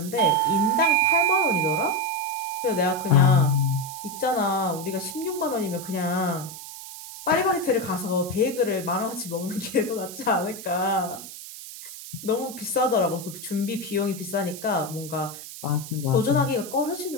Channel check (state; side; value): noise; right; hiss, 12 dB below the sound